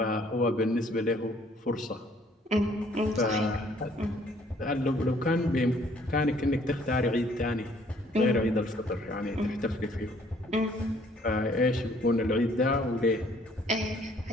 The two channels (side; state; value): both; normal; correlation 0.61